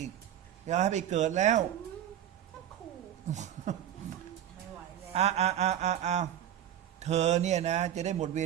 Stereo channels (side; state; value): left; quieter; 11.0 dB